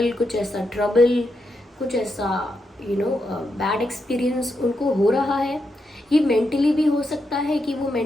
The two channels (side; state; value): both; normal; correlation 0.84